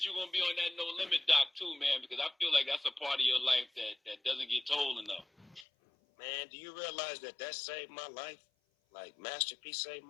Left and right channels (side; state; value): right; drops out; at 5.7 s